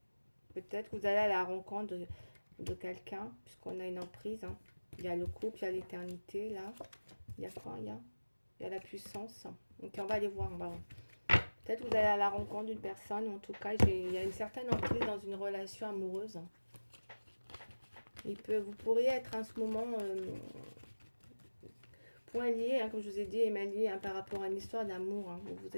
Peut-être que vous allez à la rencontre de quelqu'un, puisqu'on a une emprise. Hein. Il y a le couple, il y a l'éternité, là. Il y a quoi? Il y a la puissance. Donc, on va aller voir. Peut-être que vous allez à la rencontre d'une personne, ou en tout cas, il y a une certaine emprise dans une relation amoureuse. Vous pourriez être en ce moment point lié, hein, comme je vous ai dit, et mal lié, hein, par rapport à une histoire d'amour. Hein, où vous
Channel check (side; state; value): both; inverted; correlation -1.00